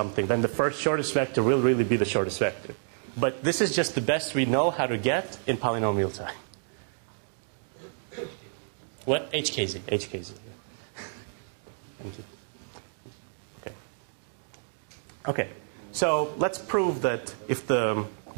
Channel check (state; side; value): silent; left; digital silence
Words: Then the first shortest vector will really be the shortest vector. But this is just the best we know how to get in polynomial time. What? HKZ. HKZ. Thank you. Okay. So let's prove that if the